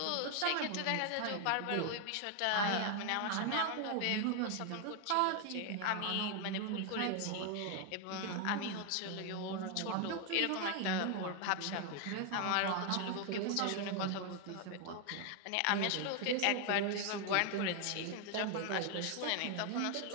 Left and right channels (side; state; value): both; different; correlation 0.00